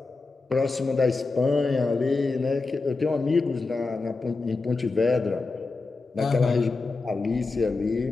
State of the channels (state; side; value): quieter; right; 3.8 dB